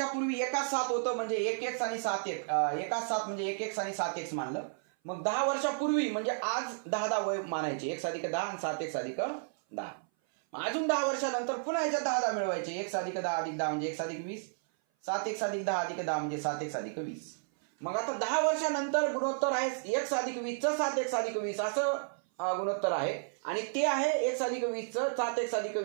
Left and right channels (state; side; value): silent; left; 56 dB below the other